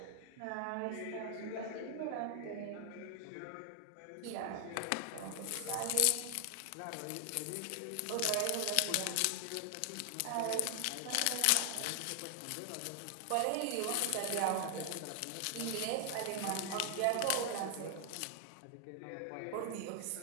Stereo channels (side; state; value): both; different; correlation 0.00